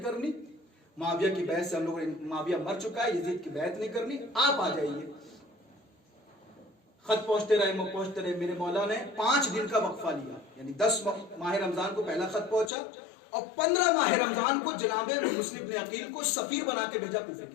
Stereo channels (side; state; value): right; drops out; at 12.7 s